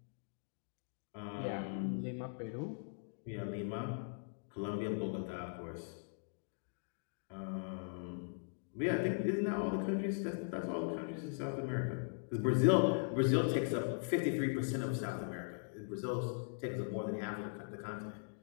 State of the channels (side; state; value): right; silent; digital silence